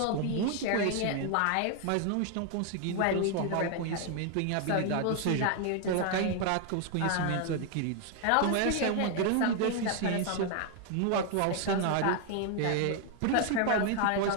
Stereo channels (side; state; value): both; different; correlation 0.00